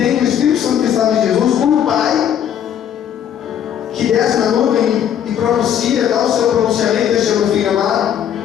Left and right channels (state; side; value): quieter; right; 9.5 dB